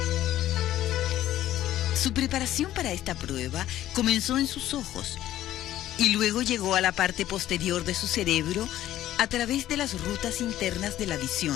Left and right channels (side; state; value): right; quieter; 13.3 dB